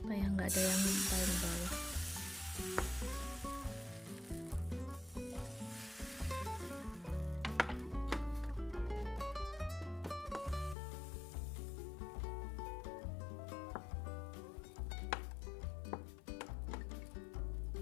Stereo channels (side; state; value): right; drops out; at 10.8 s